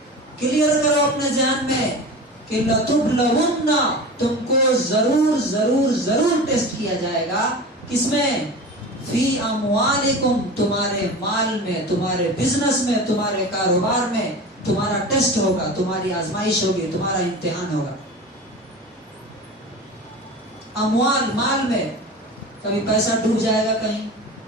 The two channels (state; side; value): normal; both; correlation 0.32